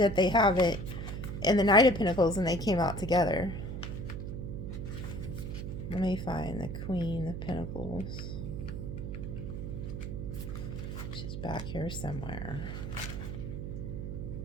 they have it in the Knight of Pentacles and they came out together. Let me find the Queen of Pentacles. She's back here somewhere.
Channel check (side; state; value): right; noise; hum, 5 dB below the sound